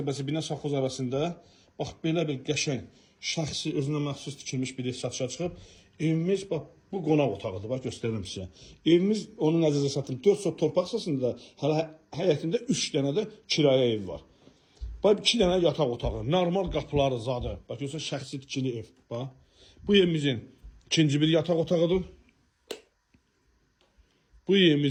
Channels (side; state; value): both; identical; correlation 1.00